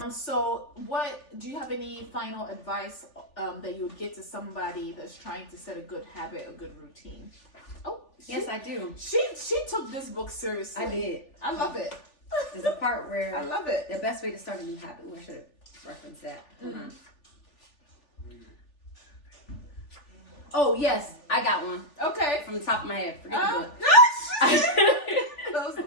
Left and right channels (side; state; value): right; late; 3.4 ms